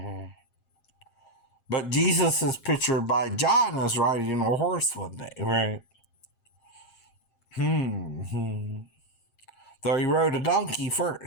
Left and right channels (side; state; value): right; late; 7.6 ms